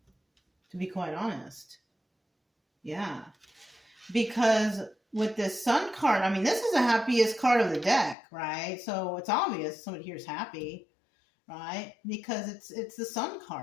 to be quite honest. Yeah. Because with this Sun card, I mean, this is the happiest card of the deck, right? So it's obvious somebody here is happy, right? Because it's the Sun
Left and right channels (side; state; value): right; drops out; at 8.2 s